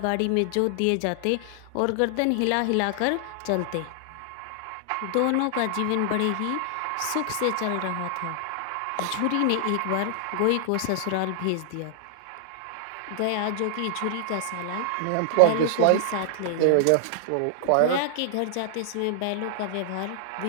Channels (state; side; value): different; both; correlation -0.01